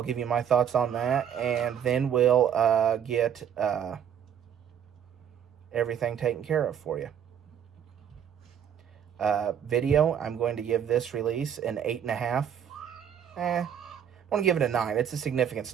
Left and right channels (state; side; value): quieter; left; 8.8 dB